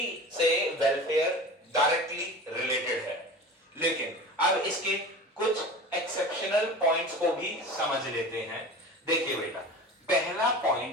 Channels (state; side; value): normal; both; correlation 0.35